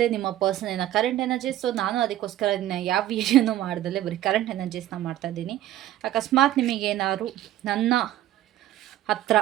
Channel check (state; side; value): quieter; left; 13.4 dB